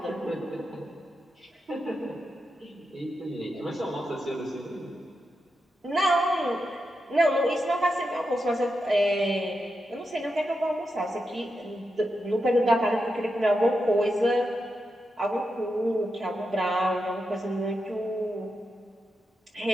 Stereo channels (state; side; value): normal; both; correlation 0.87